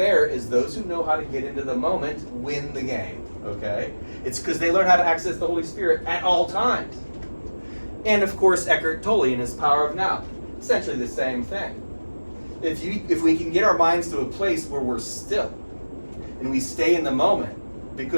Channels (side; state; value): both; inverted; correlation -1.00